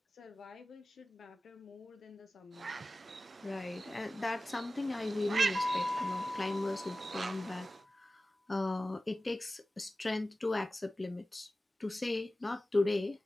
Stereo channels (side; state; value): both; normal; correlation 0.96